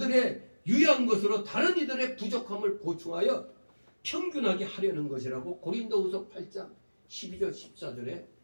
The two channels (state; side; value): inverted; both; correlation -1.00